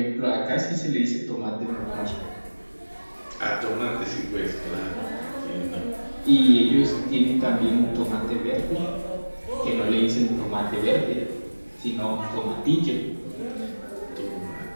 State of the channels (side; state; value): both; inverted; correlation -1.00